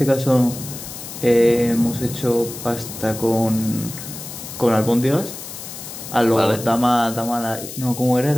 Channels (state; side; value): noise; left; hiss, 11 dB below the sound